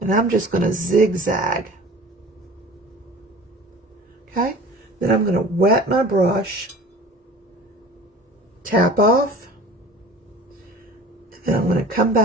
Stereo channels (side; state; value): both; normal; correlation 0.42